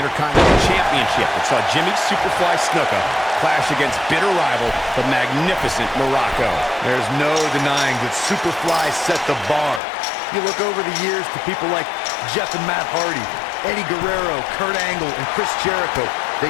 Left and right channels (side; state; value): right; drops out; at 9.8 s